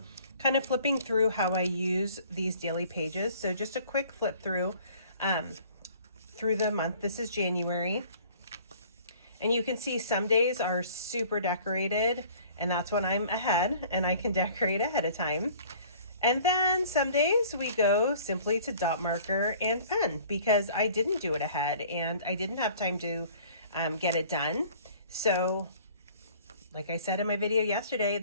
kind of flipping through how I use these daily pages. So just a quick flip through the month. This is January. And you can see some days are super decorated, and that's when I'm ahead and I can decorate ahead of time. And then some days we go simply to dot marker and pen because I didn't do it ahead and I didn't have time to get it done. So like I said in my video yesterday,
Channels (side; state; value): both; inverted; correlation -0.51